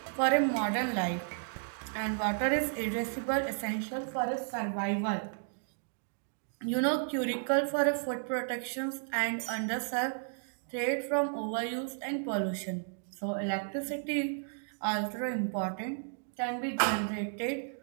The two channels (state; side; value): silent; left; digital silence